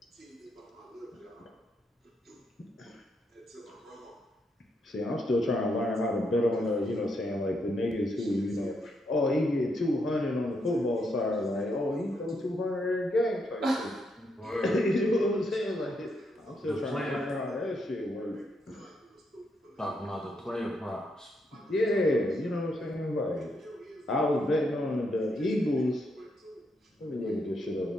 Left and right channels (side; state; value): both; normal; correlation 0.78